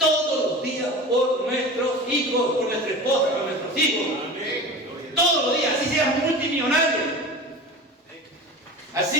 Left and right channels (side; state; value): both; normal; correlation 0.33